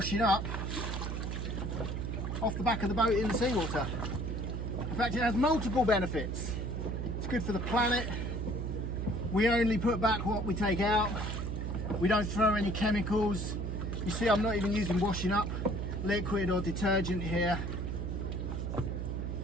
up off the back of the boat in the seawater. In fact, it has multiple benefits. It's good for the planet. We only put back what we take out. We don't throw any chemicals. You see, I'm not even using washing up liquid or detergent here.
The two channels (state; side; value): noise; right; hum, 3 dB below the sound